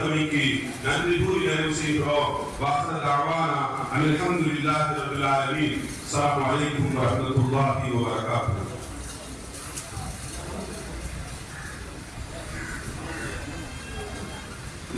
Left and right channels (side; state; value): both; identical; correlation 1.00